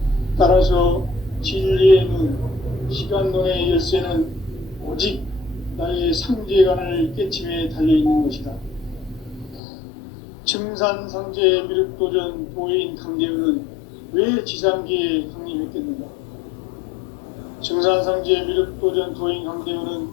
증산상제 미륵도전 도인 강대우는 왜 지상기에 강림했겠는가? 증산상제 미륵도전 도인 강대우는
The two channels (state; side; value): drops out; right; at 9.6 s